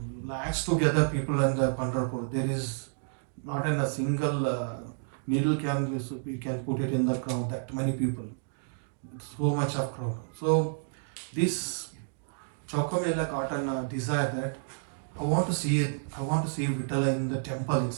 lakhs together people in the Pandharpur. There is not in a single needle we can put it in the crowd. That many people, so much of crowd. So this Chokamela got a desire that I want to see it. I want to see Vitala in the temple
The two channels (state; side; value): silent; left; digital silence